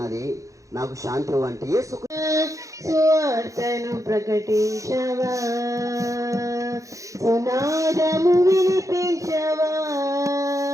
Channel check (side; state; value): left; late; 0.16 ms